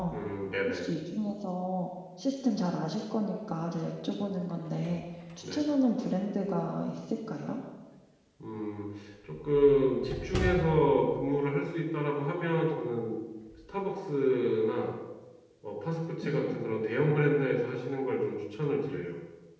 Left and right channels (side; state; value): both; identical; correlation 1.00